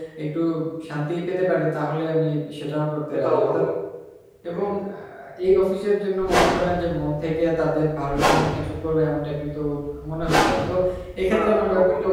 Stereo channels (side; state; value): both; identical; correlation 1.00